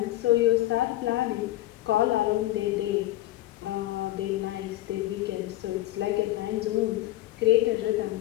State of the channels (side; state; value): right; quieter; 15.7 dB